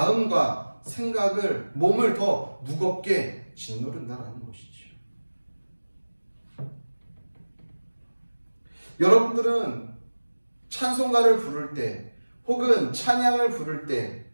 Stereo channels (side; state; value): both; inverted; correlation -1.00